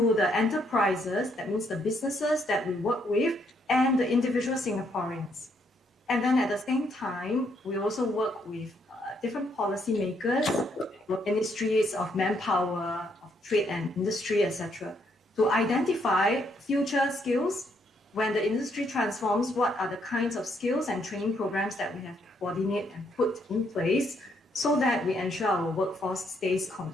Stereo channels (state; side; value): normal; both; correlation 0.73